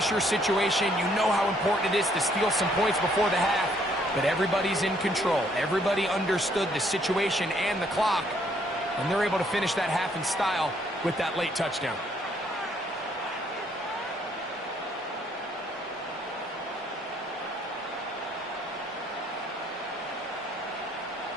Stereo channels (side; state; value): both; normal; correlation 0.67